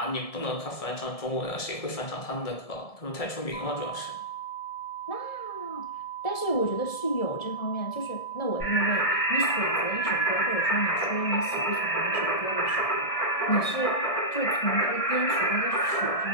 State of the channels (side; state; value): right; late; 1.7 ms